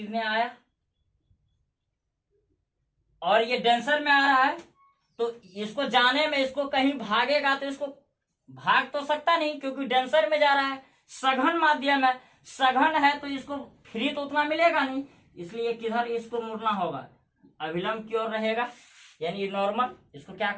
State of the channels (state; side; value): identical; both; correlation 1.00